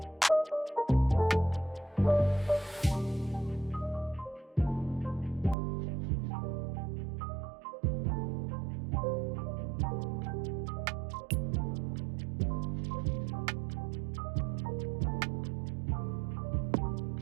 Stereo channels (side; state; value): left; drops out; at 5.6 s